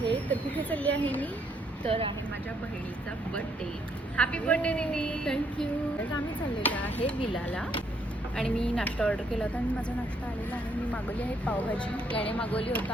तर कुठे चालली आहे मी? तर आहे माझ्या बहिणीचा बर्थडे. हॅपी बर्थडे दीदी. थँक्यू. तर आम्ही चाललेलो आहे विलाला आणि मी नाश्ता ऑर्डर केला होता आणि माझा नाश्ता आलेला आहे. मी मागवली आहे पावभाजी. याने मागवली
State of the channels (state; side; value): normal; both; correlation 0.71